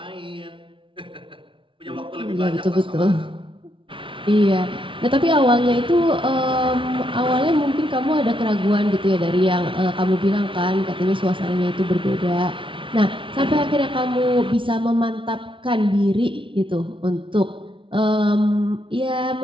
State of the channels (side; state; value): left; late; 0.25 ms